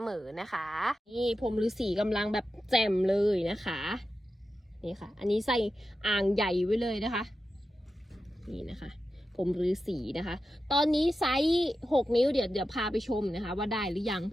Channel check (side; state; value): both; normal; correlation 0.91